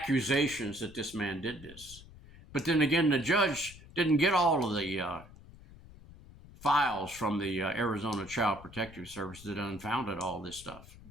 that this man did this. But then again, the judge didn't get all of the files from the Arizona Child Protective Service that unfounded all this stuff.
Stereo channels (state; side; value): noise; left; rumble, 19 dB below the sound